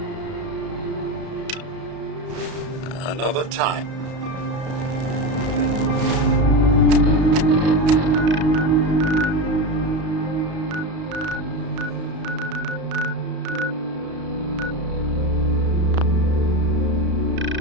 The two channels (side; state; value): left; late; 33 ms